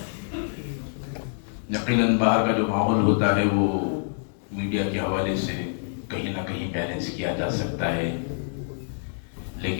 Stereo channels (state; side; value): silent; right; digital silence